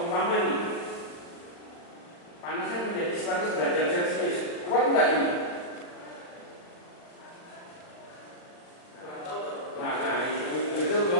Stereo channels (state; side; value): late; right; 40 ms